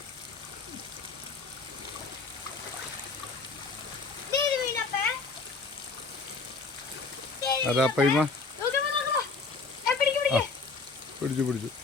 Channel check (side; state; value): right; quieter; 4.1 dB